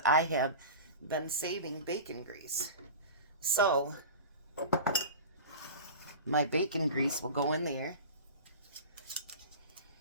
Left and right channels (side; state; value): both; inverted; correlation -0.32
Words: I have been saving bacon grease. So, my bacon grease will go in there.